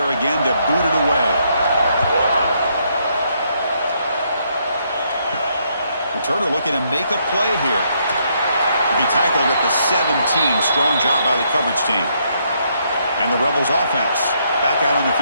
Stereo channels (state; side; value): inverted; both; correlation -0.74